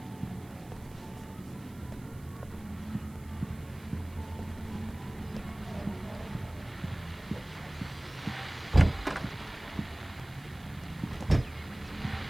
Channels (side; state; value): right; noise; hiss, 24 dB below the sound